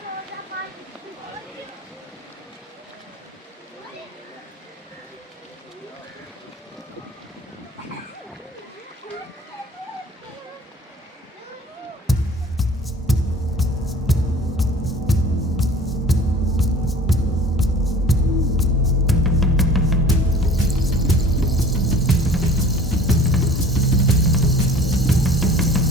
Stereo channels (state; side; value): normal; both; correlation 0.46